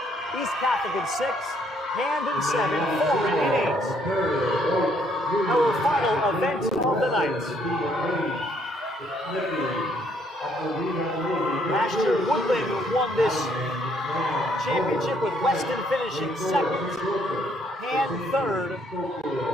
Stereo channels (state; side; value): normal; both; correlation 0.68